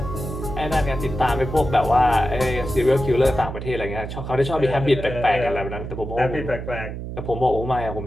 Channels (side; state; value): right; noise; hum, 7 dB below the sound